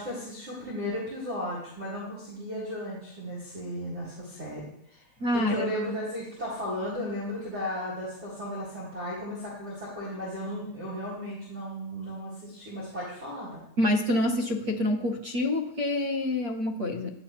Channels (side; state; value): left; late; 8.5 ms